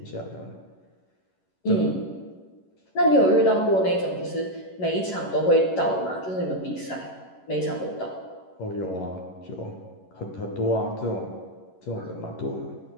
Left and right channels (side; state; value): right; late; 11 ms